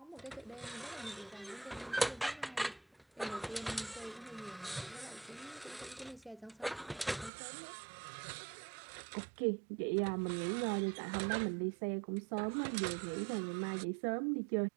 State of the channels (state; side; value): drops out; left; at 7.3 s